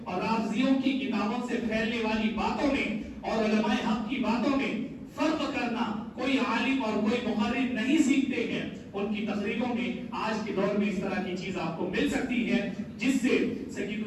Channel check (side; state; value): both; identical; correlation 1.00